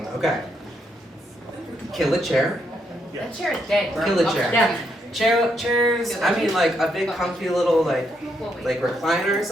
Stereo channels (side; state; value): both; normal; correlation 0.77